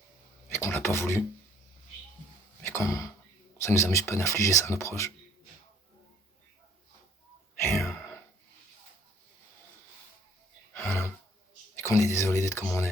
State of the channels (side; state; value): both; normal; correlation 0.58